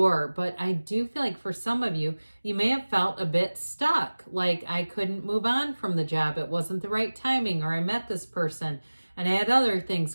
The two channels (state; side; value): inverted; both; correlation -1.00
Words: but I do feel like for some of you, you may have felt a bit stuck. Like I couldn't move on from the job. It wasn't the right timing, or I met this person and I had other things